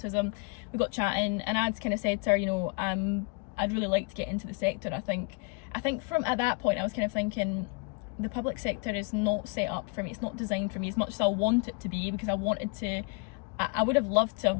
We got chatting, and I'd kind of said to her, you know, I'd really like to get into the sector. I think from at that point I was kind of thinking, the public sector is not set up for me. It's not designed for me as much as I want it to be, because I would have loved to have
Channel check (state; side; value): quieter; right; 31.2 dB